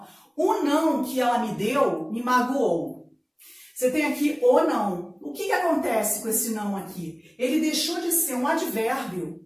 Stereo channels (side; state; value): both; identical; correlation 1.00